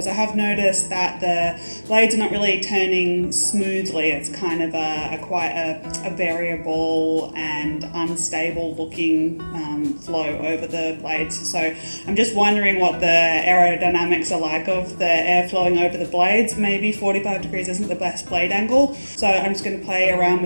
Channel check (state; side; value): inverted; both; correlation -1.00